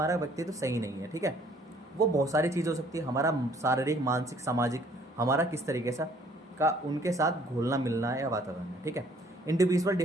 व्यक्तित्व सही नहीं है। ठीक है, वो बहुत सारी चीज़ हो सकती है, हमारा शारीरिक, मानसिक, सामाजिक, हमारा किस तरीके से का उनके साथ घुलना मिलना है या वातावरण है। ठीक है, इंडिविजुअल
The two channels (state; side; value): normal; both; correlation 0.60